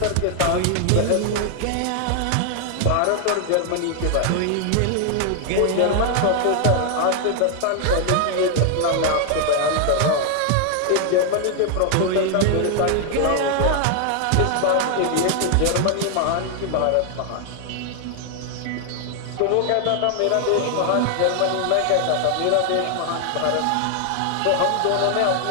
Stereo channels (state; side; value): different; both; correlation 0.00